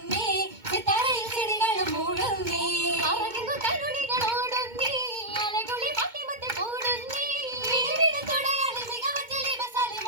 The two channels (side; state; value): left; late; 2.2 ms